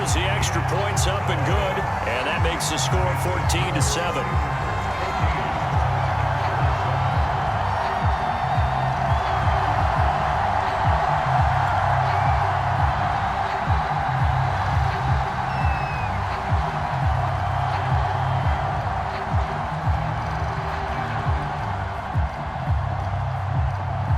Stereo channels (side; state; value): both; identical; correlation 1.00